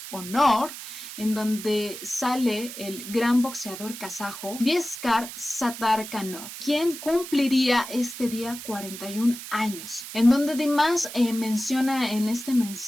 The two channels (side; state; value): right; noise; hiss, 11 dB below the sound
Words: honor, en donde sale el gran boxeador kazajo Vieskar Satarkanov, quien cumpliría este día 41 años, en donde Dimash menciona en este